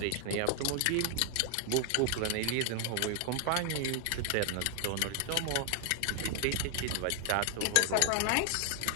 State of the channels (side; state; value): both; different; correlation 0.00